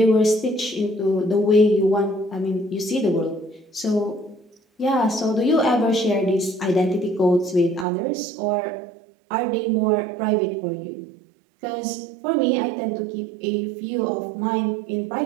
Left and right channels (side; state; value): left; drops out; at 7.9 s